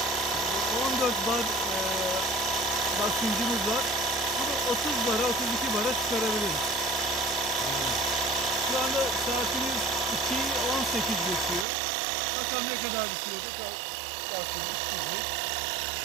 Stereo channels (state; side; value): drops out; left; at 11.7 s